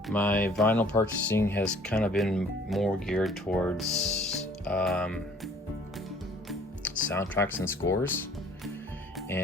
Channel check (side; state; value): both; normal; correlation 0.56